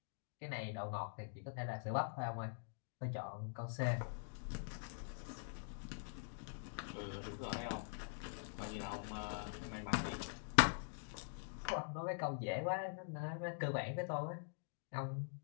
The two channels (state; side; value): silent; right; digital silence